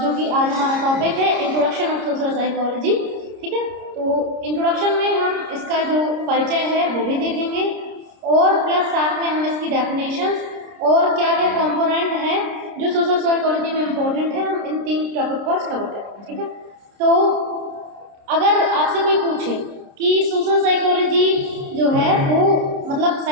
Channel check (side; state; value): left; late; 30 ms